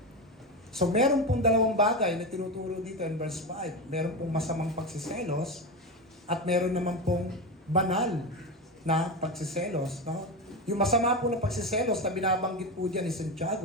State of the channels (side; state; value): both; normal; correlation 0.18